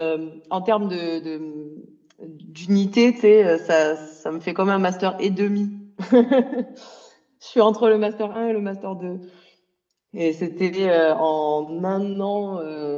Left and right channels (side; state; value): both; identical; correlation 1.00